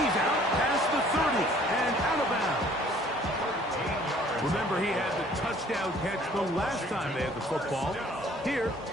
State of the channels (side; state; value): both; normal; correlation 0.55